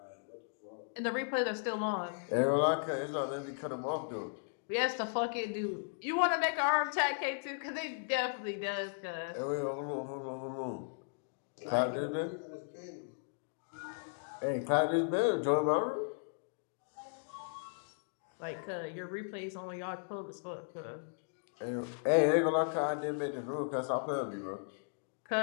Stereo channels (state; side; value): silent; right; digital silence